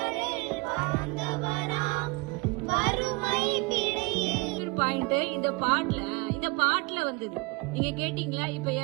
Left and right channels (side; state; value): left; quieter; 26.2 dB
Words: இந்த பாட்டுல வந்தது. நீங்க கேட்டீங்களா? இப்ப